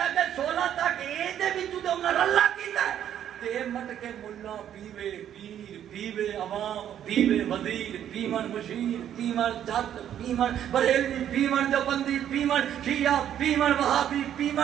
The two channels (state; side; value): quieter; left; 10.3 dB